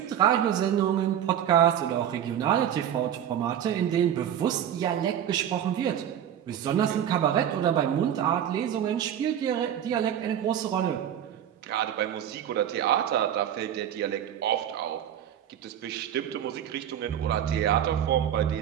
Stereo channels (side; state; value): left; quieter; 10.0 dB